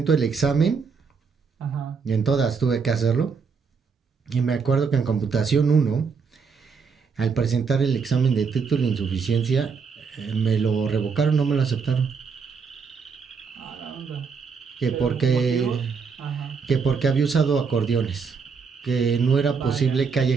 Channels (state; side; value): quieter; left; 5.5 dB